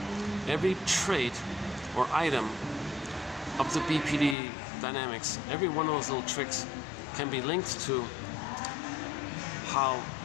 Every trait or item of the BPD dynamics, every one of those little tricks can be linked to how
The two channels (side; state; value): right; drops out; at 4.4 s